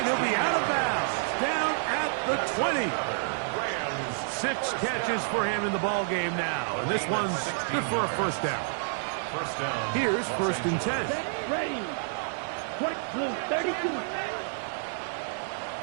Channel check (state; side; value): silent; left; 59 dB below the other